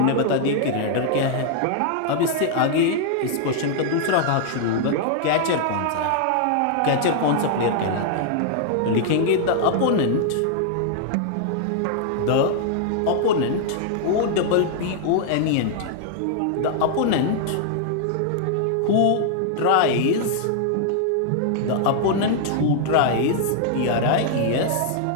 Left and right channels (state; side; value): different; both; correlation 0.00